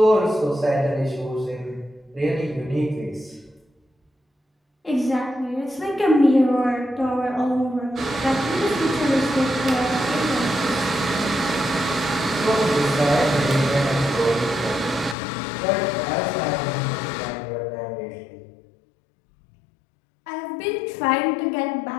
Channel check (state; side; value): drops out; right; at 15.2 s